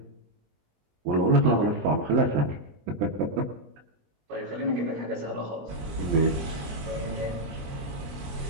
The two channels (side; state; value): left; late; 20 ms